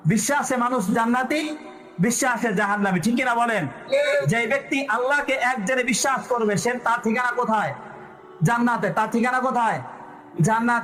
বিশ্বাসে মানুষ জান্নাতি, বিশ্বাসে জাহান্নামী, ঠিক কিনা বলেন? যে ব্যক্তি আল্লাহকে এক জেনে বিশ্বাস করবে সে তার ঠিকানা কোথায়? জান্নাতে। তার ঠিকানা কোথায়?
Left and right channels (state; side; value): identical; both; correlation 1.00